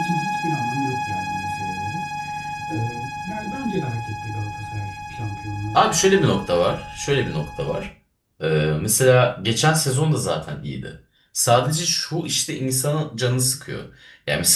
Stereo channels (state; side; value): identical; both; correlation 1.00